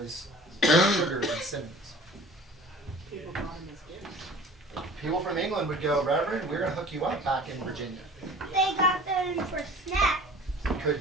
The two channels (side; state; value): both; normal; correlation 0.44